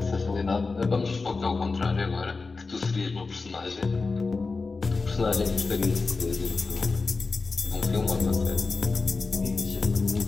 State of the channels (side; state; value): right; quieter; 4.1 dB